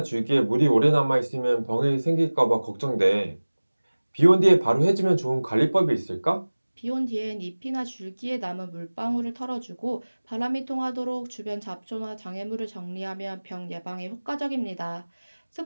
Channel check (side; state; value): both; inverted; correlation -1.00